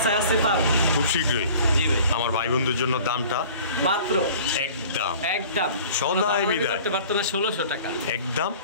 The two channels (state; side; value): inverted; both; correlation -0.46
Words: আছে পার খুব শীঘ্রই। জি ভাই, আমার ভাই বন্ধুর জন্য দামটা মাত্র একদম একদম সদাই বিদায় করতে পারতো না 1600 টাকা একদম।